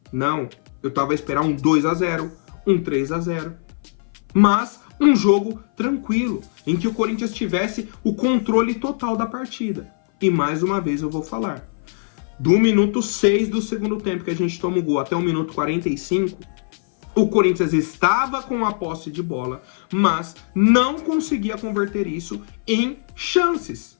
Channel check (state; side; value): silent; right; 59 dB below the other